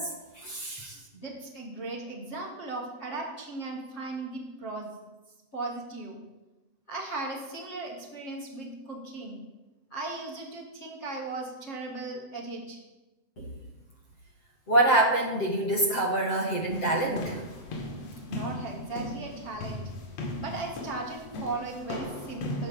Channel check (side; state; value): right; late; 7.7 ms